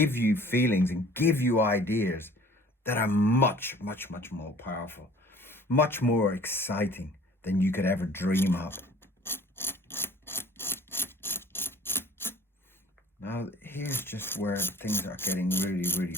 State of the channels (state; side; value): normal; both; correlation 0.50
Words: you feelings and give you ideas that are much more powerful, much more exciting than you could ever dream up. Now, here's just where things are getting really